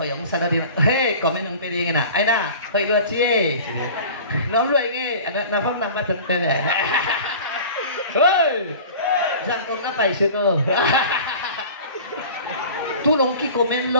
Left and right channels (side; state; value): both; inverted; correlation -0.40